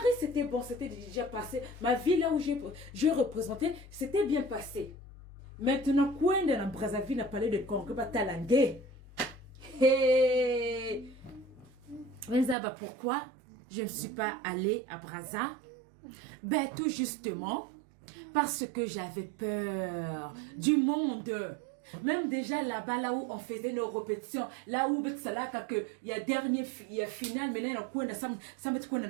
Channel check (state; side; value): drops out; left; at 12.6 s